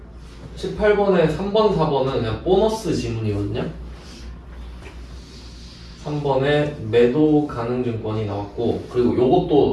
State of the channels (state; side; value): identical; both; correlation 1.00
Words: 18번에 3번, 4번은 그냥 보너스 지문이거든요. 3번에 매도 가능 증권이 나왔고 그리고